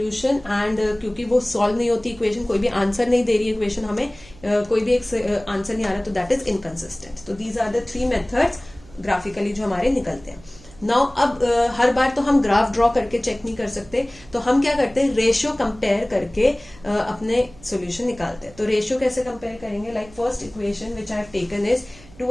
And क्योंकि वो सॉल्व नहीं होती इक्वेशन, कोई भी आंसर नहीं दे रही इक्वेशन, हमें कोई भी एक आंसर नहीं आ रहा, तो दैट इज इनकंसिस्टेंट। तो these are the three methods graphically जो हमारे निकलते हैं। नाउ अब हर बार तो हम ग्राफ ड्रॉ करके चेक नहीं कर सकते, तो हम क्या करते हैं, रेशियो कंपेयर करके अपने सॉल्यूशन निकालते हैं। तो रेशियो कैसे कंपेयर करेंगे, like first equation which I have taken is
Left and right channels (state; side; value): noise; right; hum, 23 dB below the sound